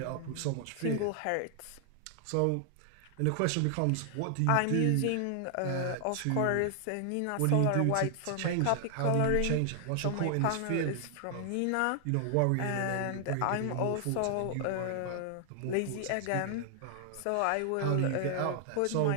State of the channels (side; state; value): both; different; correlation 0.00